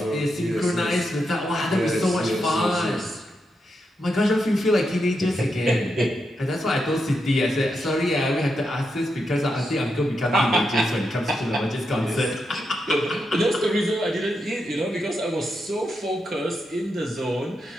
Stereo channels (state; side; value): normal; both; correlation 0.85